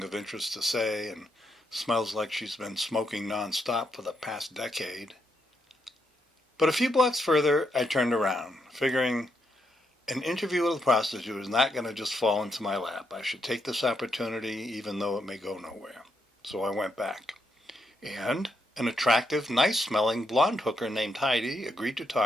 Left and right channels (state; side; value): normal; both; correlation 0.79